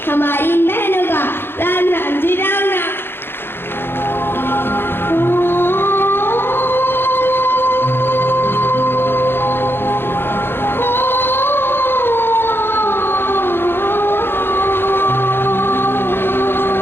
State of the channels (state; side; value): late; right; 0.11 ms